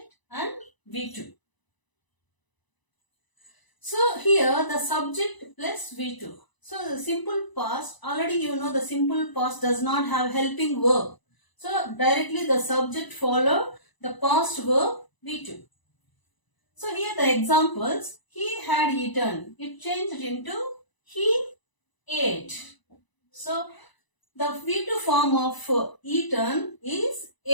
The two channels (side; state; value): right; late; 1.0 ms